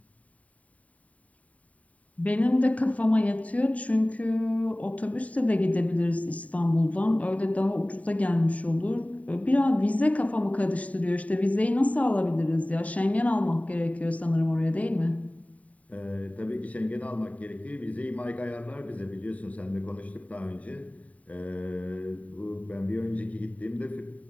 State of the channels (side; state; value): right; late; 0.069 ms